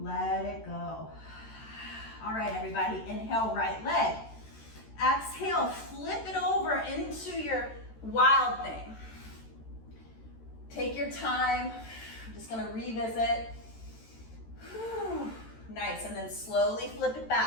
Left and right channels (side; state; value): right; late; 13 ms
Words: it go. All right, everybody, inhale, right leg. Exhale, flip it over into your wild thing. Take your time. I'm just gonna revisit. Whew. Nice, and then slowly flip it